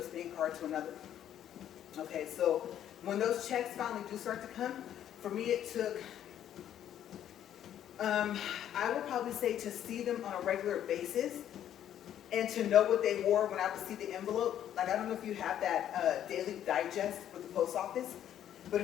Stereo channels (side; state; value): right; quieter; 10.7 dB